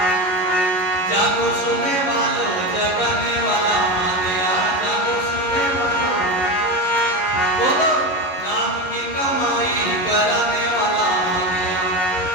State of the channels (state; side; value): late; right; 11 ms